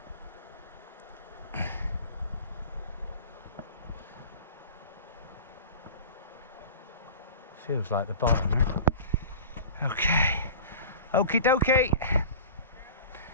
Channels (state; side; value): inverted; both; correlation -0.37